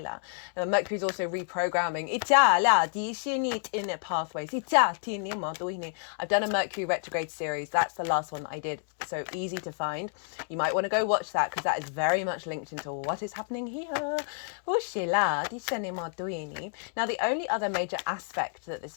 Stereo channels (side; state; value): right; silent; 58 dB below the other